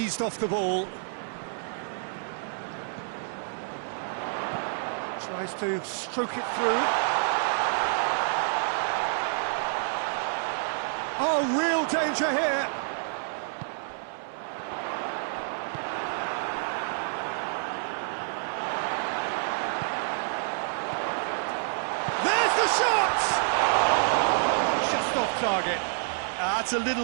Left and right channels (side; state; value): left; silent; 59 dB below the other